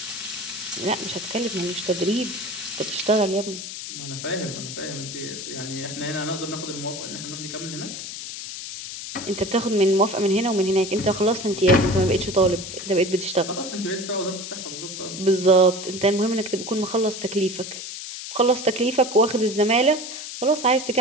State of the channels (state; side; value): noise; left; hiss, 8 dB below the sound